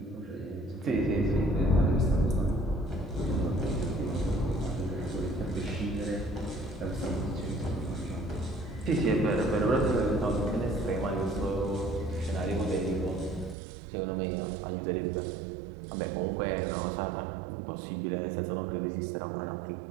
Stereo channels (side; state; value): left; drops out; at 13.6 s